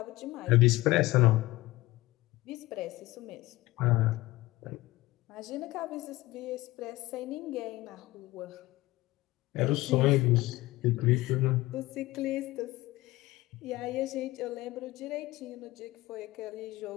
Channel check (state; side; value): quieter; right; 18.9 dB